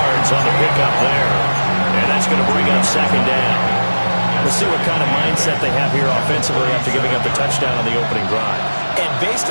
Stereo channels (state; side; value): inverted; both; correlation -1.00